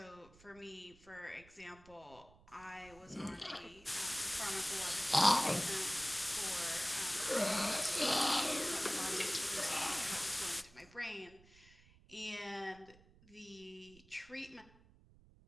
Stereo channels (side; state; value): right; noise; rumble, 25 dB below the sound